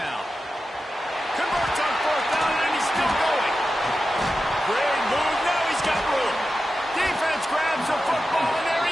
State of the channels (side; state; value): both; normal; correlation 0.92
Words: Converts on 4th down, and he's still going. Great move. Now he's got room. Defense grabs the football, and there